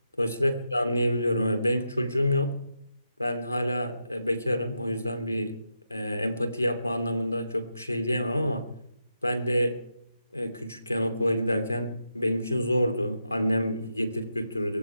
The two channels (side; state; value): both; inverted; correlation -0.84